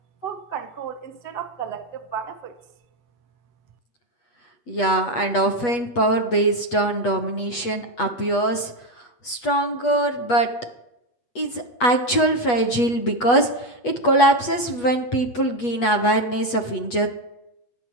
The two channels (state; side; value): late; right; 8.3 ms